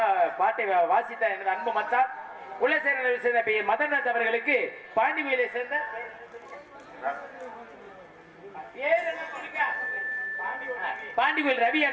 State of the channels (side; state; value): both; identical; correlation 1.00